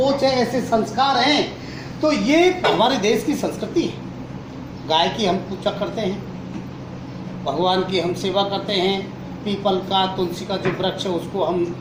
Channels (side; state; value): both; identical; correlation 1.00